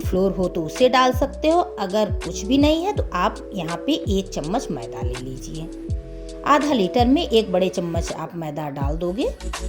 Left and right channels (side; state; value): both; identical; correlation 1.00